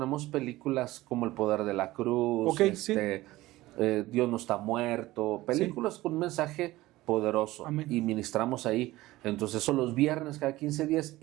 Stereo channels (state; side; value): quieter; left; 17.8 dB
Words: películas como El Poder de la Cruz, Dios no está muerto, películas con un mensaje poderoso. Amén. Y ministramos ahí. Entonces son los viernes cada 15 días